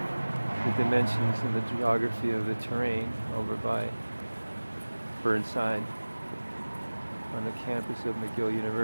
the dimensions and the geography of the terrain over by Burnside on the campus of McGill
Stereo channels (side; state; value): both; inverted; correlation -1.00